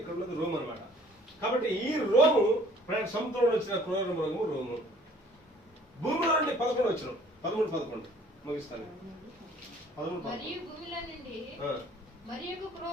ఇక్కడ ఉన్నది రోమ్ అనమాట. కాబట్టి ఈ రోము సముద్రంలో వచ్చిన క్రూర మృగము రోము. భూమిలో నుండి 11 వచ్చిన 13-11 ముగిస్తాను. 13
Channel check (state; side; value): normal; both; correlation 0.55